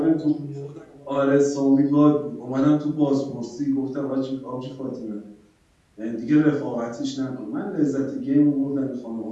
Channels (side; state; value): both; identical; correlation 1.00